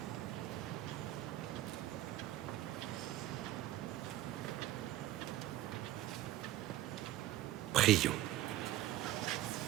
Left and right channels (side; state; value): left; quieter; 14.7 dB